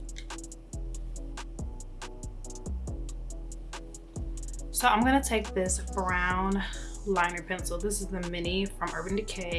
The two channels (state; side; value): identical; both; correlation 1.00